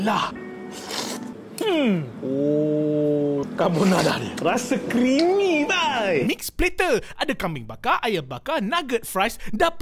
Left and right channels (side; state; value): both; identical; correlation 1.00